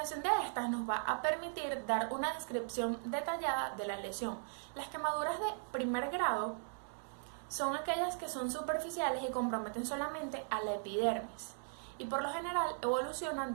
de estas nos va a permitir dar una descripción detallada de la lesión. Las quemaduras de primer grado son aquellas que son superficiales y comprometen solamente a la epidermis y por lo general evolucionan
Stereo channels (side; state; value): left; silent; digital silence